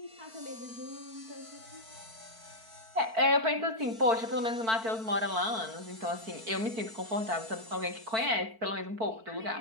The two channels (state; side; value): late; left; 4.5 ms